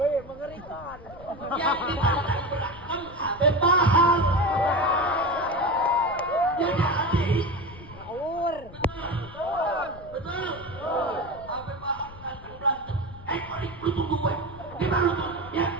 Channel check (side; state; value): left; noise; rumble, 18 dB below the sound